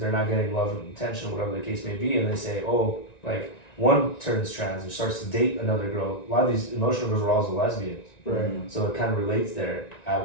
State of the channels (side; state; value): right; late; 1.9 ms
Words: not getting love and attention, whatever the case may be, and they say, oh, like one turns trans and starts to date another girl. A lot of these emotional girls are also lesbians, Right. so it kind of relates there.